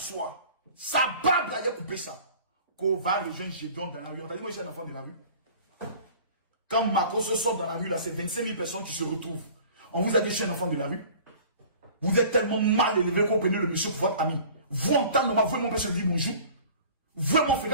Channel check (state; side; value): inverted; both; correlation -0.46